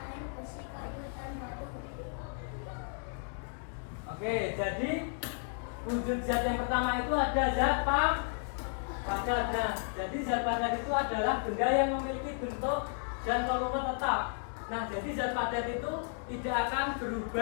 lain besi, kayu, Oke, jadi wujud zat yang pertama itu ada zat padat. Nah, jadi zat padat itu adalah benda yang memiliki bentuk dan volume tetap. Nah, jadi zat padat itu tidak akan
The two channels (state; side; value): silent; right; 55 dB below the other